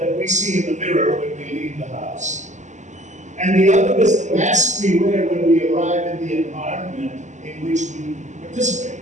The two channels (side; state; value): left; late; 0.34 ms